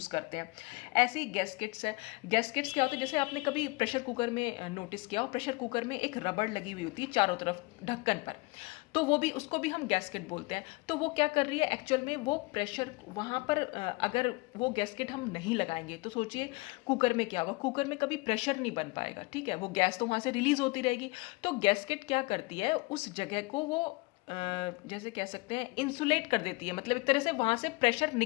करते हैं। ऐसे ही गैस्केट्स है। गैस्केट्स क्या होते हैं, जैसे आपने कभी प्रेशर कुकर में नोटिस किया हो, प्रेशर कुकर में एक रबड़ लगी हुई होती है चारों तरफ ढक्कन पर, तो वो भी, उसको भी हम गैस्केट बोलते हैं। तो वो क्या कर रही है एक्चुअल में, वो प्रेशर वहाँ पर अगर वो गैस्केट हम नहीं लगाएंगे तो सोचिए कुकर में क्या होगा, कुकर में कभी प्रेशर नहीं बन पाएगा, ठीक है, वो गैस तो वहाँ से रिलीज होती रहेगी। तो गैस्केट क्या करती है, उस जगह को वो जैसे कह सकते हैं इंसुलेट कर देती है, मतलब एक तरह से वहाँ से प्रेशर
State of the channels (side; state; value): right; quieter; 25.0 dB